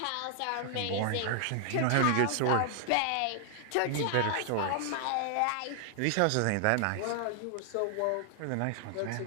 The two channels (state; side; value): different; both; correlation 0.00